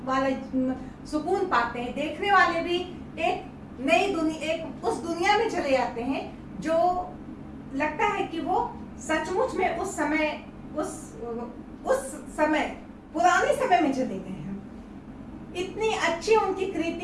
पाते हैं। देखने वाले भी एक नई दुनिया, एक उस दुनिया में चले जाते हैं जो लगता है कि वो सचमुच में उस समय पुराने समय में चले गए हैं। इतनी अच्छी उनकी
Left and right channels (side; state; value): both; identical; correlation 1.00